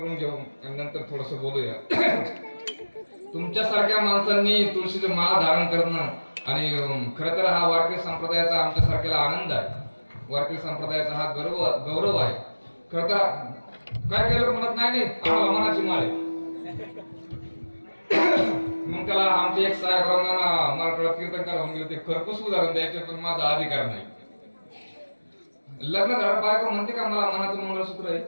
घेऊ आणि नंतर थोडस बोलूया. तुमच्यासारख्या माणसांनी तुळशीचे माळ धारण करणं आणि खरं तर हा वारकरी संप्रदायाचा आमच्यासारख्याला आनंद आहे. वारकरी संप्रदायाचा हा गौरव आहे. खरं तर काय काय लोक म्हणत नाही आम्हाला मनाची माळ आहे. मग त्याला आमचे एक साहेबांना मराठवाड्यात कीर्तन करावून गेले. ते खरपूस उदाहरण द्यायचे पण माझा अधिकार नाही. लग्न झालं बायको म्हणते का मला मनाचं मंगळसूत्र आहे?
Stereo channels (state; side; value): inverted; both; correlation -1.00